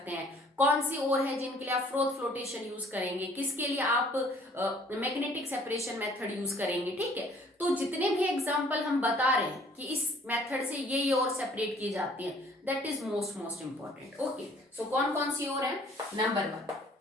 हैं, कौन सी ओर है जिनके लिए आप फ्रोथ फ्लोटेशन यूज करेंगे, किसके लिए आप मैग्नेटिक सेपरेशन मेथड यूज करेंगे। ठीक है, तो जितने भी एग्जांपल हम बता रहे हैं कि इस मेथड से ये ओर सेपरेट की जाती है, that is most important. Okay, so कौन कौन सी ओर है। Number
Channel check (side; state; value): both; normal; correlation 0.57